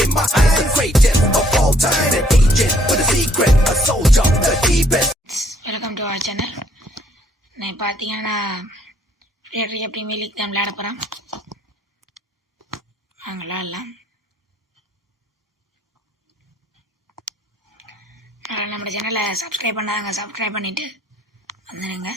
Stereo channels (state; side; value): normal; both; correlation 0.65